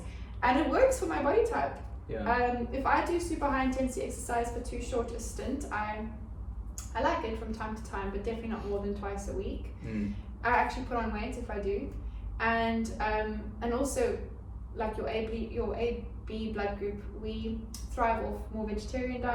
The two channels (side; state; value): both; identical; correlation 1.00